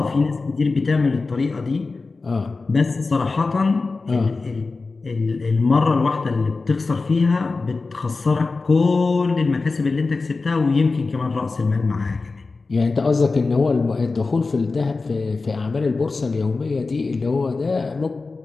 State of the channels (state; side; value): quieter; right; 3.9 dB